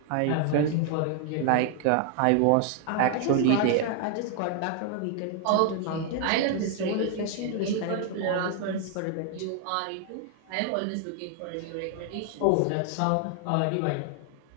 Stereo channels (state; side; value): different; both; correlation 0.00